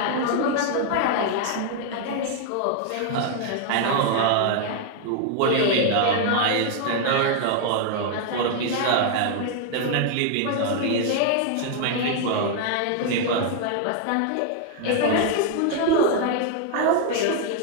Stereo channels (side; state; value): both; different; correlation 0.00